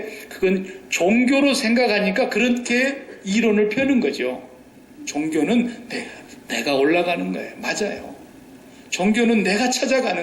그건 종교로 생각하니까 그렇게 이론을 펴는 거죠. 종교는 내가 올라가는 거예요. 맞아요. 종교는 내가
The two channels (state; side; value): identical; both; correlation 1.00